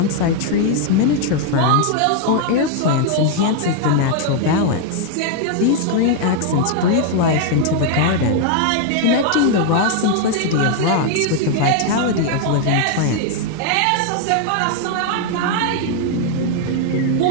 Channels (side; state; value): both; different; correlation 0.00